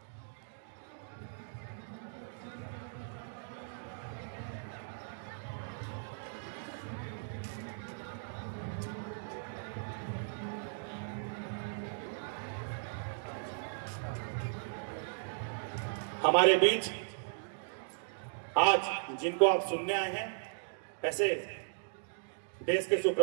हमारे बीच आज जिनको आप सुनने आए हैं, ऐसे देश के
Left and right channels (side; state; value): left; silent; digital silence